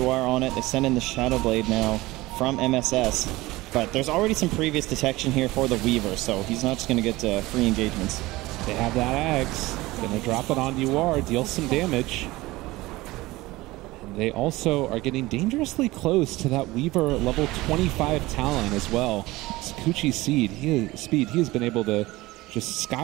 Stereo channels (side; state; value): left; quieter; 19.5 dB